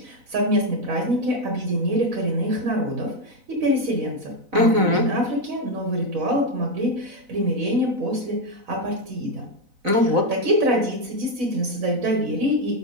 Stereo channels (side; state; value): left; late; 4.0 ms